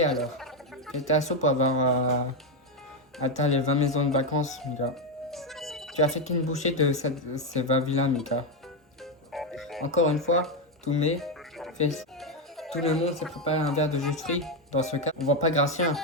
alors. J'étais à chaud pour avoir atteint les 20 maisons de vacances, Mika. Tu as fait qu'une bouchée de ces 20 villas, Mika. Encore une fois, tout le monde s'est préparé un verre de jus de fruits. Dans ce cas, on voit pas Gratien.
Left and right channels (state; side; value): normal; both; correlation 0.06